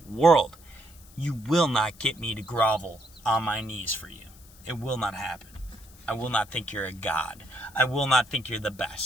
world. You will not get me to grovel on my knees for you. It will not happen. I will not think you're a god. I will not think you're the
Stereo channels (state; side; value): noise; left; hiss, 24 dB below the sound